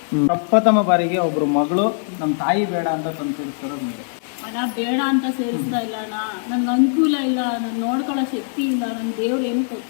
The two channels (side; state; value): right; silent; digital silence